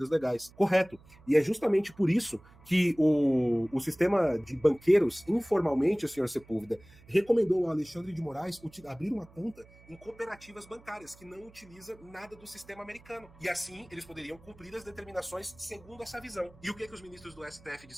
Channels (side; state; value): right; noise; hum, 25 dB below the sound